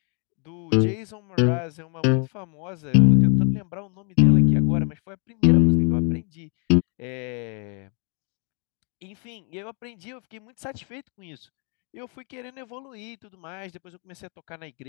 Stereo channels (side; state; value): right; quieter; 38.7 dB